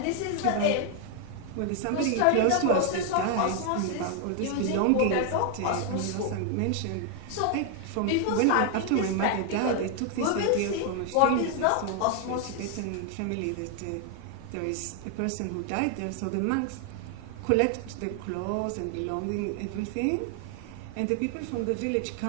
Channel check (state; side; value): different; both; correlation 0.00